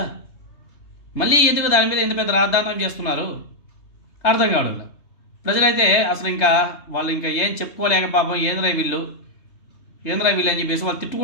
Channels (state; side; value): late; right; 3.2 ms